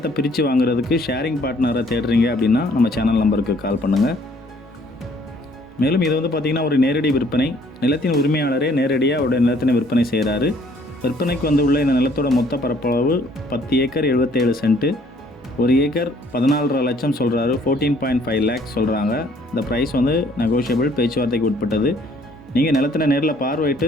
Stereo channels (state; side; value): normal; both; correlation 0.61